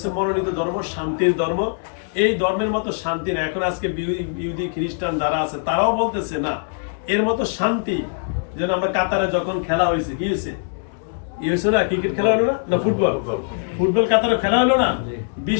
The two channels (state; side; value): silent; right; 63 dB below the other